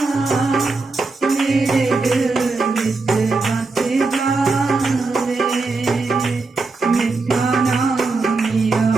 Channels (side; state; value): left; quieter; 3.8 dB